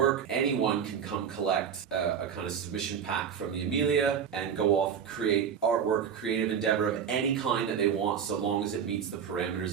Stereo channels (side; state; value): left; quieter; 7.7 dB